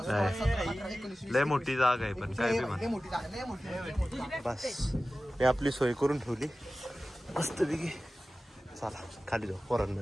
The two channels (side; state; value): both; normal; correlation 0.96